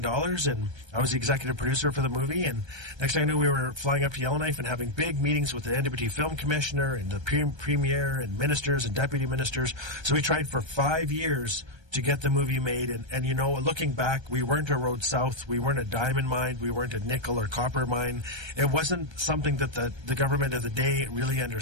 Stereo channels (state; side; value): late; left; 1.3 ms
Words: and I was the executive producer for the movie. And next thing I knew, we were flying up to Yellowknife and having big meetings with the NWT Film Commissioner and the Premier and ministers and deputy ministers. So we tried for 5 years to get the movie made. And looking back, we weren't a Road South. We weren't a diamond mine. We weren't a nickel or copper mine. It wasn't something that the government of the day really